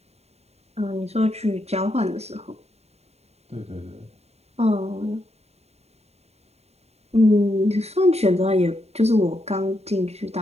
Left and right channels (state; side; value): late; left; 0.31 ms